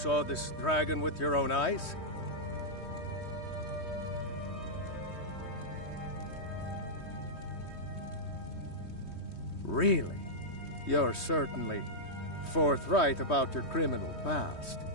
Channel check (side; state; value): right; late; 3.2 ms